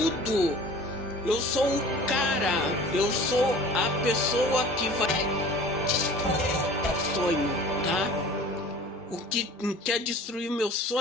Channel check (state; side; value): normal; both; correlation 0.44